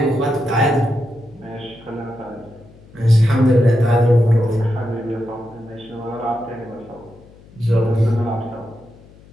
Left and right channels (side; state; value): left; noise; hum, 24 dB below the sound